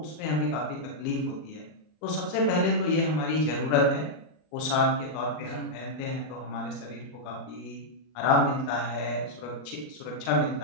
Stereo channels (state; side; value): late; right; 39 ms